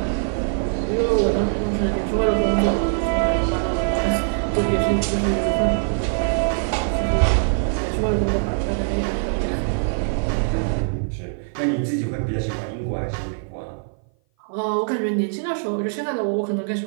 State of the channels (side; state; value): left; silent; 57 dB below the other